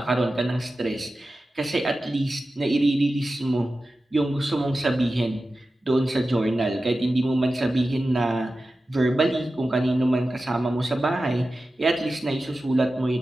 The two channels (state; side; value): normal; both; correlation 0.94